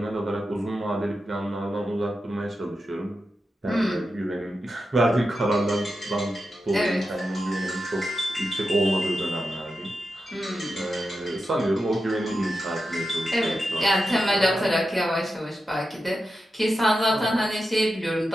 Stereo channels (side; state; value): both; normal; correlation 0.90